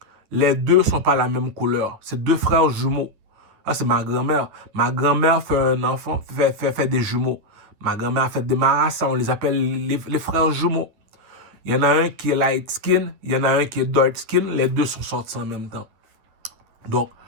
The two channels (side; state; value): left; late; 10 ms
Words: les deux ne sont pas la même couleur. C'est deux frères jumeaux. Ah, c'est ma grand-mère. Ma grand-mère fait un enfant, fait des jumeaux. Ma grand-mère fait des marassas, on les appelle les frères jumeaux. Il y en a un qui est light skin, il y en a un qui est dark skin. Les deux sont sortis en même temps. Donc,